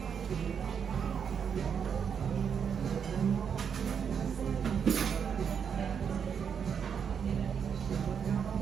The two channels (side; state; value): left; quieter; 7.2 dB